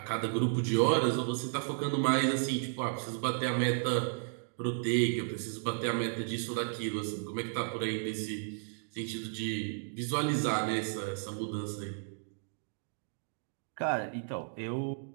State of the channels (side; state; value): left; silent; digital silence